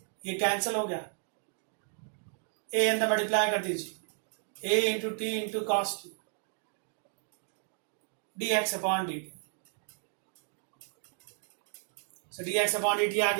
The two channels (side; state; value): left; silent; 56 dB below the other